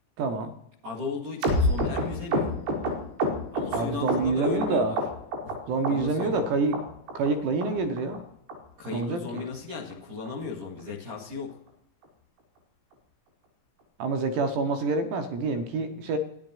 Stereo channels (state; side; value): late; left; 17 ms